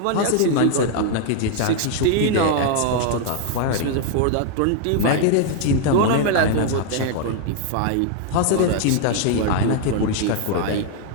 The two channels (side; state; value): both; different; correlation 0.00